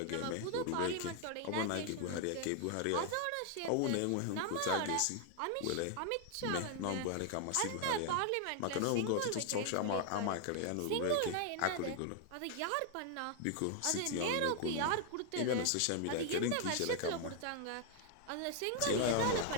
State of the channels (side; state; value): both; different; correlation 0.00